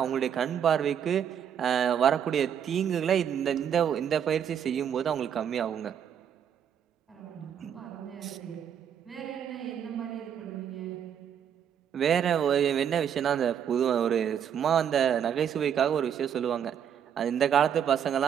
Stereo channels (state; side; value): quieter; left; 8.6 dB